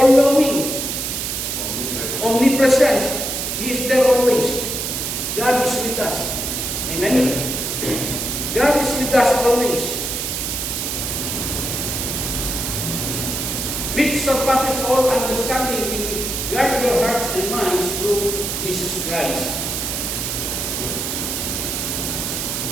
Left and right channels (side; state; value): right; noise; hiss, 2 dB below the sound